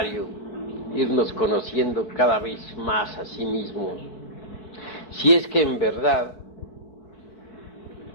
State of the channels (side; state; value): right; late; 4.7 ms